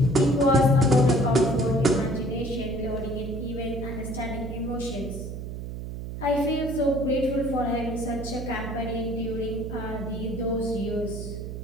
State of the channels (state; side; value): noise; right; hum, 7 dB below the sound